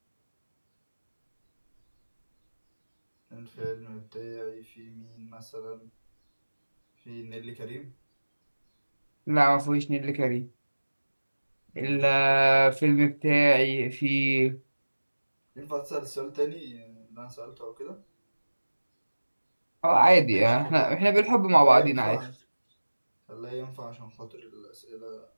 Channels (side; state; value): both; inverted; correlation -1.00